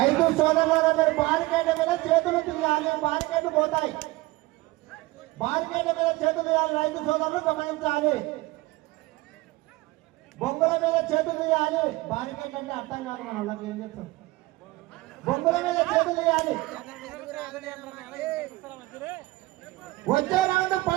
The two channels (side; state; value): left; quieter; 20.5 dB